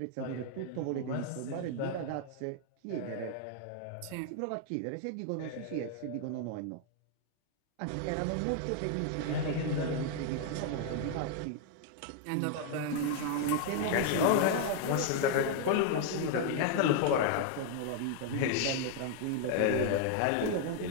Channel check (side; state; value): both; different; correlation 0.00